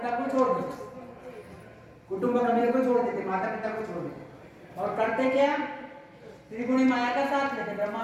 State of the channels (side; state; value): both; identical; correlation 1.00